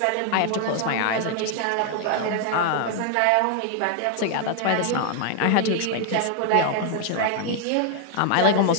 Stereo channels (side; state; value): both; different; correlation 0.00